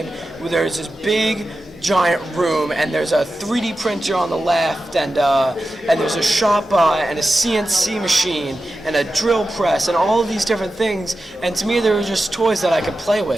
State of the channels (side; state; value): both; normal; correlation 0.92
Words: there's this big, giant room, and there's a 3D printer on the left, and there's a Shopbot and a CNC machine and a drill press and all of these different things. And to me, they were just toys that I could play